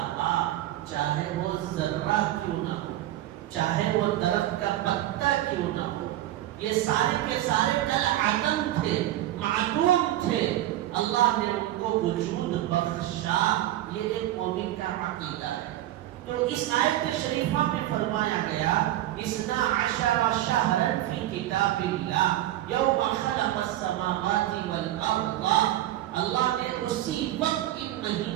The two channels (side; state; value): left; quieter; 14.1 dB